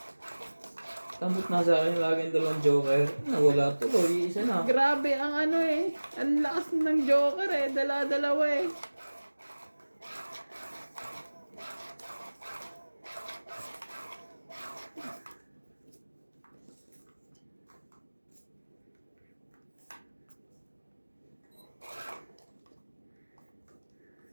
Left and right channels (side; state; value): both; inverted; correlation -1.00